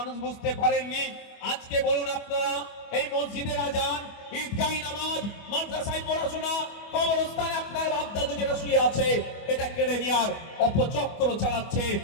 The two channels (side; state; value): right; late; 25 ms